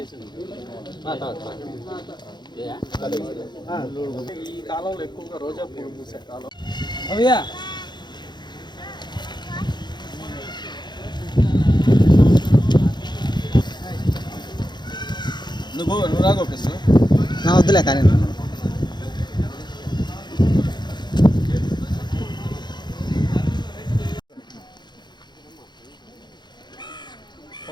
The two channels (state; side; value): late; right; 0.21 ms